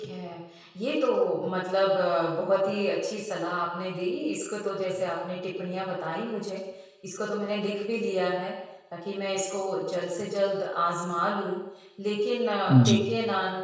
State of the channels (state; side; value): identical; both; correlation 1.00